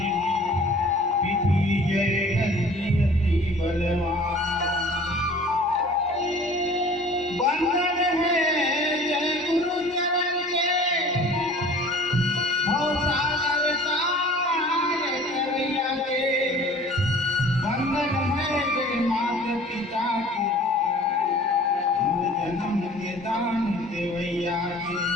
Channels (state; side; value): normal; both; correlation 0.47